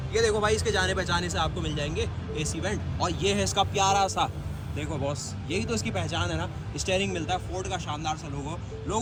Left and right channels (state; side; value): identical; both; correlation 1.00